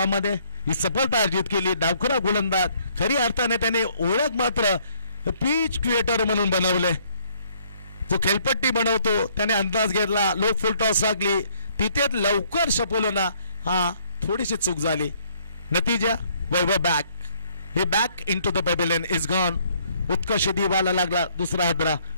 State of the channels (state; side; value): inverted; both; correlation -0.65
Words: ही सफलता अर्जित केली. डावखुरा गोलंदाज खरी अर्थाने त्याने ओळख मात्र पिच क्रिएटर म्हणून बनवले. जो खेळपट्टी बनवतो त्याने अंदाज घेतला. लो फुल टॉस लागली तिथे लवकर शपोलोना हा थोडीशी चूक झाली. नतीजा Vaibhav back he back in to the pavilion is gone. Utkarsh दिवाला लागला दुसरा हादरा